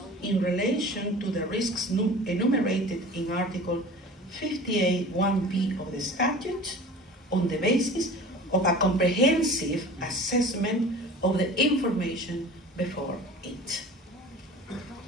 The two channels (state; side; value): normal; both; correlation 0.40